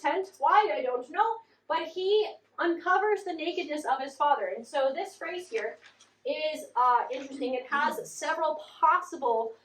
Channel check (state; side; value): identical; both; correlation 1.00